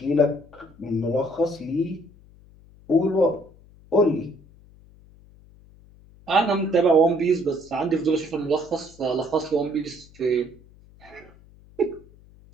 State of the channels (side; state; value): left; noise; hum, 25 dB below the sound